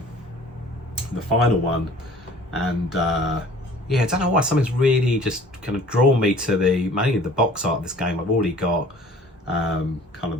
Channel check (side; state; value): both; normal; correlation 0.50